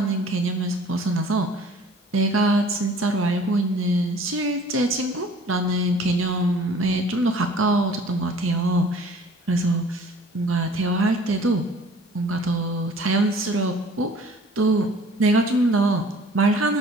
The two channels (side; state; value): both; normal; correlation 0.50